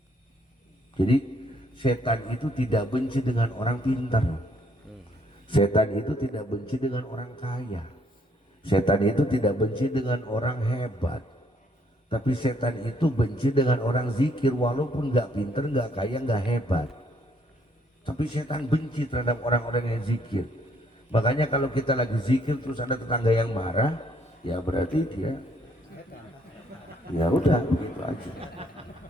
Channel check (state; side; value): normal; both; correlation 0.68